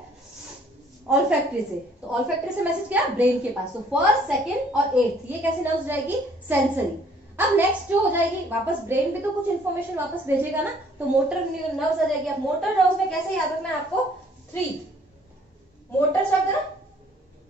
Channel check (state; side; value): normal; both; correlation 0.60